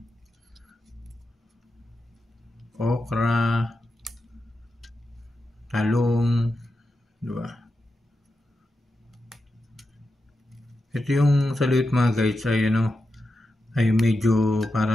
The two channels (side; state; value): both; normal; correlation 0.89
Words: Okra, talong, di ba? Ito yung saluyot mga guys ay ano, ay medyo